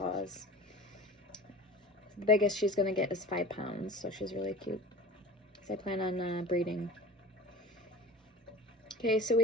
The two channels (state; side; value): normal; both; correlation 0.38